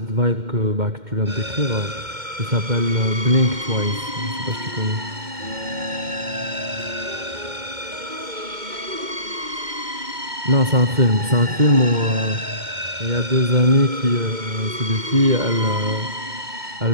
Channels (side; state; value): left; late; 2.1 ms